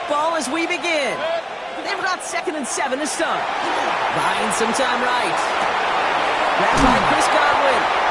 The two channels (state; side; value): identical; both; correlation 1.00